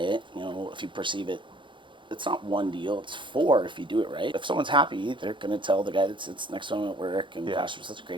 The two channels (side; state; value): left; late; 0.23 ms